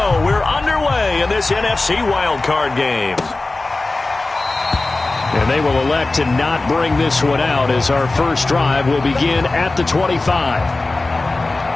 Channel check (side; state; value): right; quieter; 3.2 dB